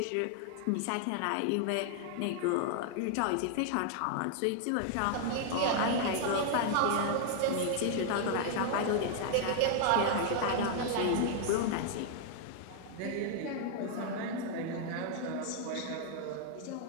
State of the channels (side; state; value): both; different; correlation 0.00